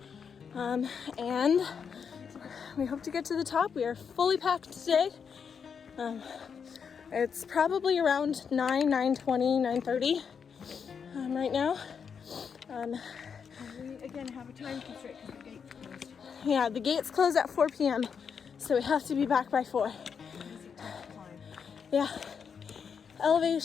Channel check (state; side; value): quieter; right; 6.6 dB